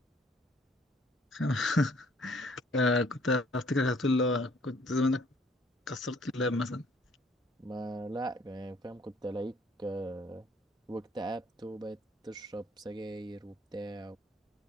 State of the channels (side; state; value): both; normal; correlation 0.60